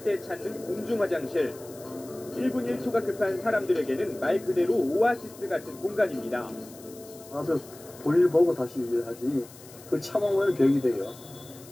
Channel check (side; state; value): left; noise; hiss, 20 dB below the sound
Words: 때 찾는 공중 화장실. 1분 1초가 급한 사람들에게는 말 그대로 오아시스 같은 공간입니다. 와서 볼일 보고 다시 일하지. 그걸 참으면 벽이 돼요.